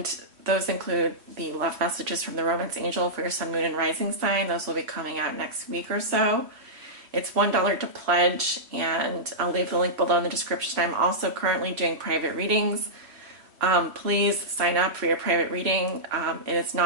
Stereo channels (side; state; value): left; late; 3.2 ms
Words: those include the love messages from the Romance Angel for your Sun, Moon, and Rising sign. Those will be coming out next week or so. It's $1 to pledge, and I'll leave the link below in the description. I'm also currently doing private readings. Please sign up for your private reading. It is